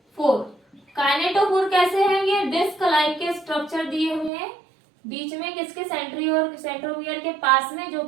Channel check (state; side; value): drops out; left; at 4.3 s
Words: काइनेटोफोर कैसे हैं? ये डिस्क लाइक के स्ट्रक्चर दिए हुए हैं बीच में किसके, सेंट्रोमियर के पास में, जो